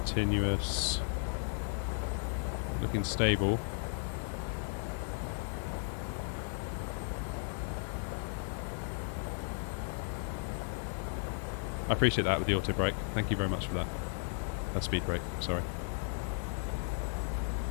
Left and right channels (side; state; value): right; silent; 54 dB below the other